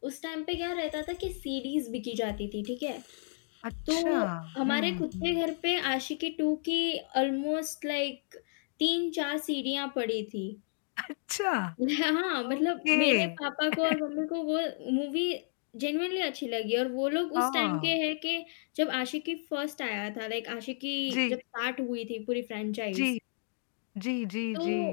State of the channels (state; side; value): silent; right; digital silence